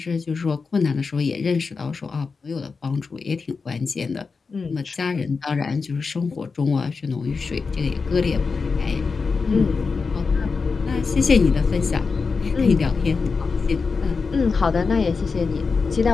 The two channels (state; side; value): quieter; right; 4.8 dB